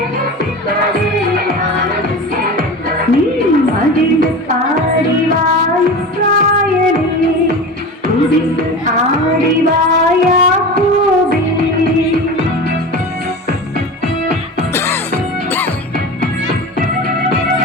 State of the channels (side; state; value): both; normal; correlation 0.30